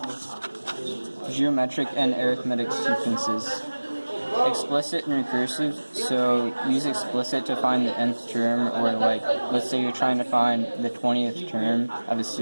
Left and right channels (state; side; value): inverted; both; correlation -1.00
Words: Geometric and arithmetic sequences. Explicit and recursive, so use explicit to find the nth term, or like, let's say you're trying to find the 20th term of a